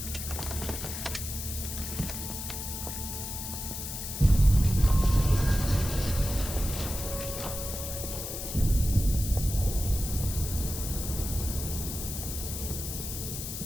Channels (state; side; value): noise; left; hiss, 6 dB below the sound